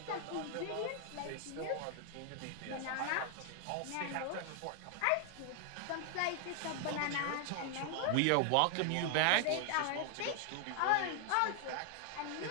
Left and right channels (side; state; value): both; different; correlation 0.00